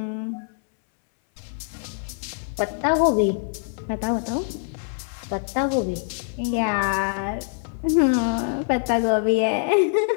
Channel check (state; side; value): silent; right; 62 dB below the other